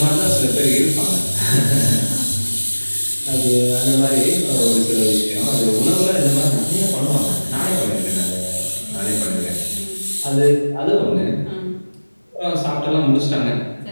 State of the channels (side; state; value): both; inverted; correlation -1.00